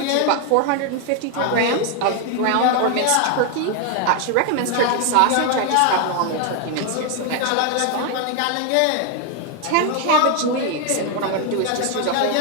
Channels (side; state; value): both; different; correlation 0.01